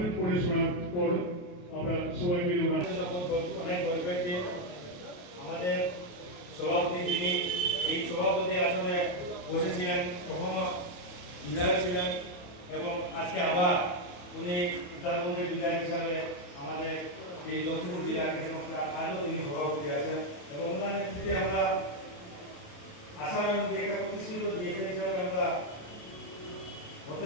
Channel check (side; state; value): right; late; 28 ms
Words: পড়ে শোনার পর আমরা সবাই মিলে অনেক গর্বের দিন। আমাদের সভাপতি যিনি এই সভাপতি আসনে বসেছিলেন, কখনো বিধায়ক ছিলেন এবং আজকে আবার উনি উত্তরবঙ্গের বিধায়ক হিসাবে আমাদের এই লক্ষ্মীপুর জেলা ক্রীড়া সংস্থার আজও তিনি সভাপতি আছেন এবং ওনার নেতৃত্বে আমরা আসাম এবং একটা প্রতিষ্ঠিত ডিএসএ হিসাবে আমরা